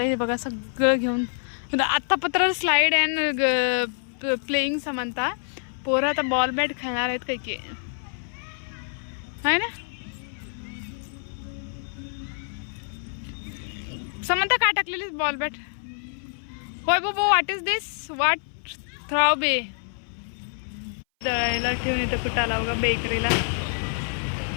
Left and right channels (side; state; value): right; silent; 58 dB below the other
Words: हे बघा सगळं घेऊन आत्ता पत्र स्लाईड अँड प्लेईंग. समंता पोरं आता बॉल बॅट खेळणार आहेत काही की आहे ना. समंता काय टाकलेली बॉल बॅट? होय बाबा व्हॉट इज दिस? व्हॉट थ्राव बे दळायला ठेवून इथं कुठं आला बघा बेकरीला.